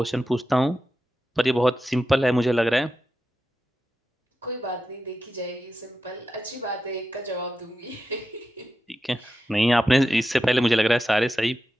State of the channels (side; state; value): both; normal; correlation 0.90